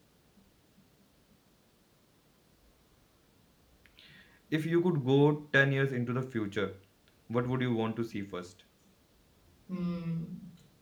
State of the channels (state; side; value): identical; both; correlation 1.00